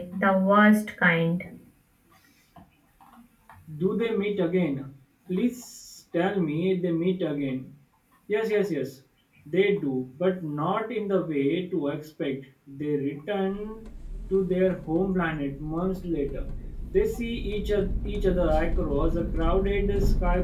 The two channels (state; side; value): identical; both; correlation 1.00